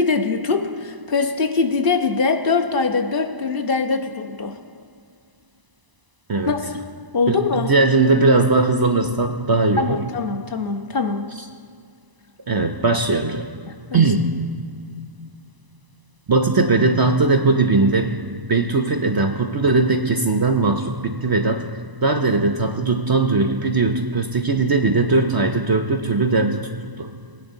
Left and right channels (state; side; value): late; left; 1.0 ms